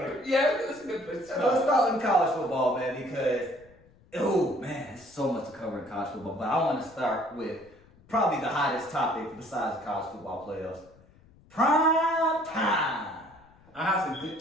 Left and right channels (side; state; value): left; noise; rumble, 28 dB below the sound